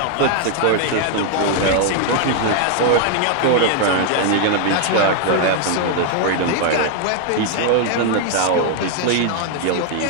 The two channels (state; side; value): different; both; correlation 0.00